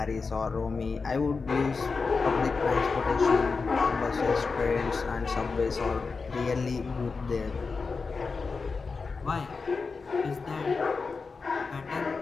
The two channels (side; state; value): right; quieter; 4.6 dB